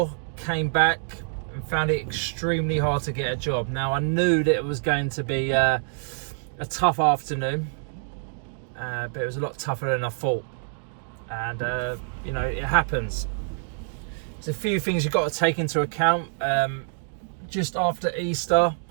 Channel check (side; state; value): left; silent; digital silence